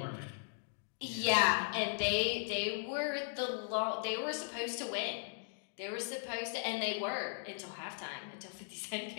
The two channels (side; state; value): right; silent; digital silence